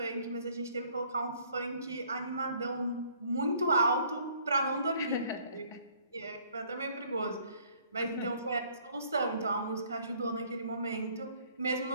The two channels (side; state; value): both; inverted; correlation -0.60